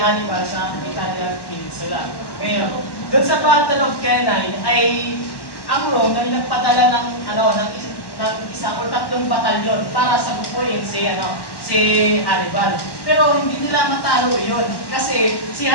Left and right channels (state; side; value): late; right; 1.1 ms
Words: sa Italian Peninsula. Ngayon, doon sa Battle of Cannae ay ang Rome ay nagpadala ng isang o tatlong batalyon para sabukuin si Hannibal. Pero hindi nila matalo iyon kasi si